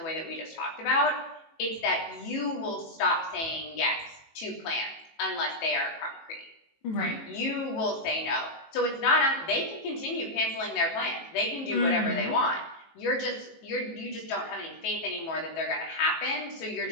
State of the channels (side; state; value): right; late; 18 ms